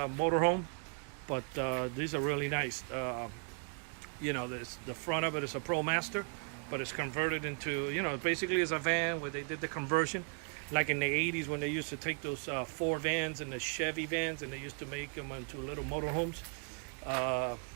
motorhome, but these are really nice. You know, the front of it is a ProMaster, but it's converted into, you know, basically it's a van where they did the conversion. Like in the 80s when they used to take those Ford vans and the Chevy vans and they used to make them into little motorhomes.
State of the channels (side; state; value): left; quieter; 39.9 dB